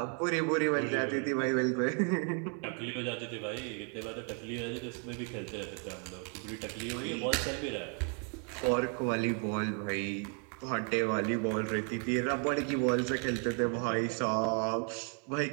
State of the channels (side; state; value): left; quieter; 38.9 dB